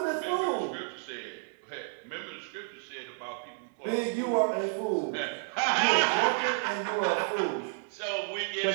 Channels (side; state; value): left; silent; digital silence